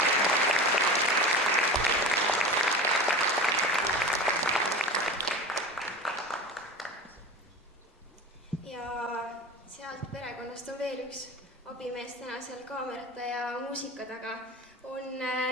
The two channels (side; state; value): both; normal; correlation 0.31